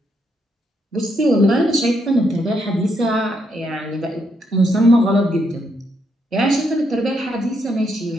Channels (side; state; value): both; normal; correlation 0.77